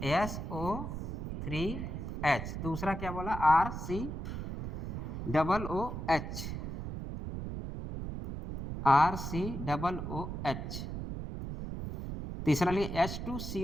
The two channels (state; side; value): noise; right; rumble, 5 dB below the sound